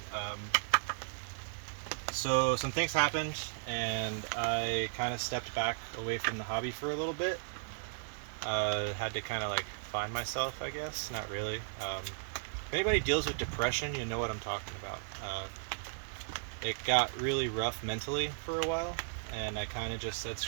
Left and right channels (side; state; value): left; silent; digital silence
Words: So some things happened and I kind of stepped back away from the hobby for a little bit. Had to kind of like find myself, I guess. Not really. If anybody deals with depression, you know what I'm talking about. It got really rough mentally for a while, and I kind of just said